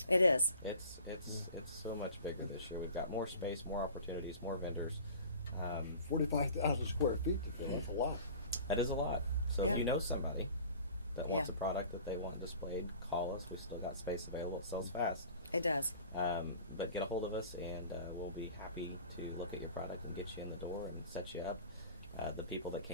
It is. It's so much bigger this year. We've got more space, more opportunities, more vendors. 45,000 square feet. That's a lot. That is a lot. So Yeah. if you know somebody that wants Yeah. a product that they want displayed, call us. We still got space available. It sells fast. It does. But get a hold of us, and we'll be happy to look at your product and get you in the door and set you up. The people that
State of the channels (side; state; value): both; inverted; correlation -0.43